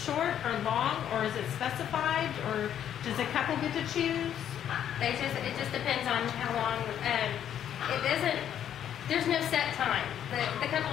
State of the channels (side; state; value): right; quieter; 9.9 dB